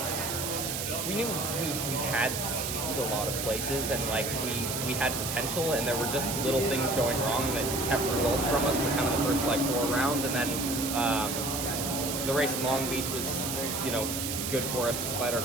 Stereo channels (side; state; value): right; noise; hiss, 3 dB below the sound